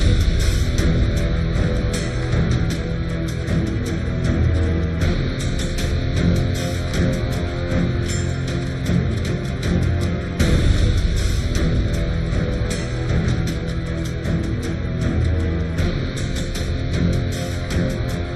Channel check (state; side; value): identical; both; correlation 1.00